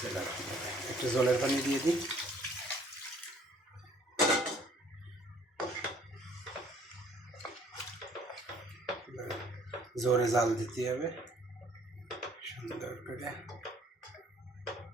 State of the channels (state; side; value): normal; both; correlation 0.58